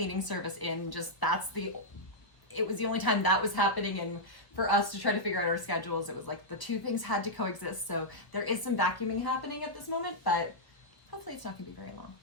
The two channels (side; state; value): right; late; 1.3 ms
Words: service in. It was the only time that was happening, and for us to try to figure out our schedules, it was like the two things had to coexist. So there is some vacuuming happening at this moment, but hopefully it's not going to be very long.